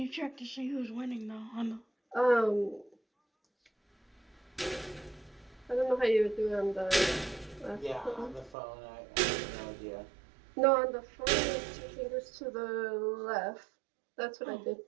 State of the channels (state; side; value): drops out; left; at 8.6 s